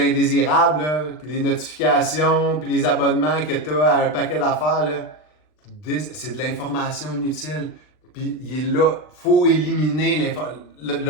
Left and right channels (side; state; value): right; late; 39 ms